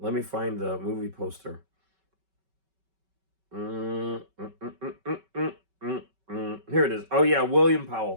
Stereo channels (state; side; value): late; left; 5.2 ms